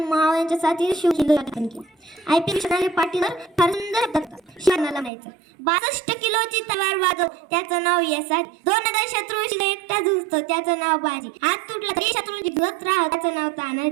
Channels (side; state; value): left; drops out; at 5.1 s